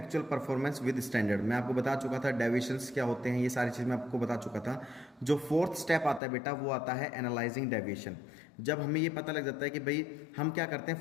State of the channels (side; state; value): right; drops out; at 6.2 s